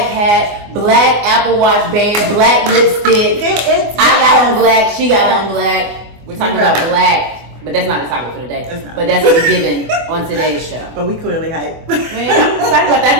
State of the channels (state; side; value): late; left; 24 ms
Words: hat, black Apple Watch band, black lipstick. I got on black, she got on black. We're talking about black. But that's not the topic for today. But that's what's given on today's show. But we clearly hype. Man, I'm excited about that. I